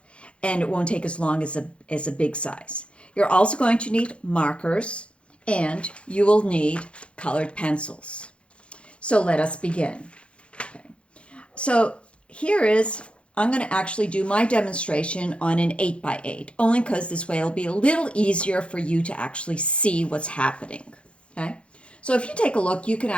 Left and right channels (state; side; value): late; right; 0.059 ms